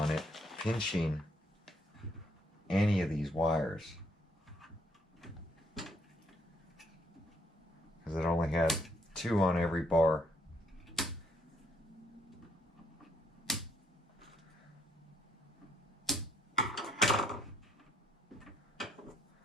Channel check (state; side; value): normal; both; correlation 0.70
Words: it, pinching any of these wires. Because it only had 2 on every bar.